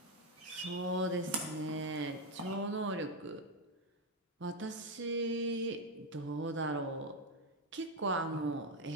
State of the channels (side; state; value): both; normal; correlation 0.07